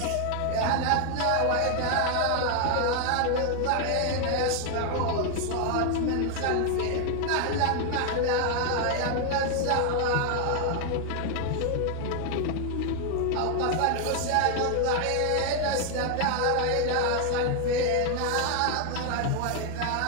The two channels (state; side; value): different; both; correlation 0.00